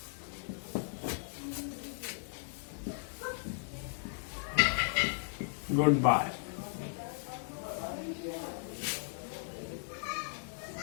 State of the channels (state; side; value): silent; right; 54 dB below the other